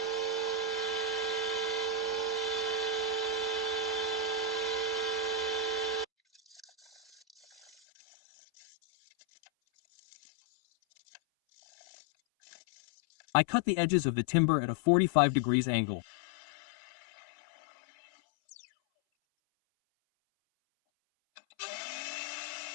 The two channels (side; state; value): right; drops out; at 7.7 s